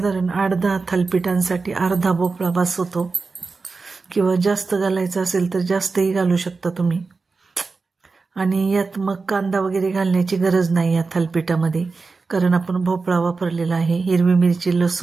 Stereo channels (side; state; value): left; quieter; 4.2 dB